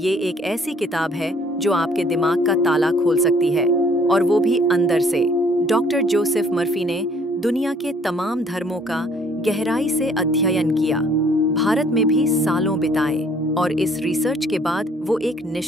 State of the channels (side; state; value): both; normal; correlation 0.60